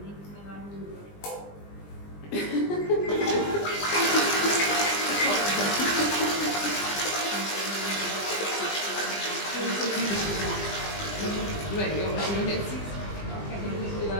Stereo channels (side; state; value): right; late; 20 ms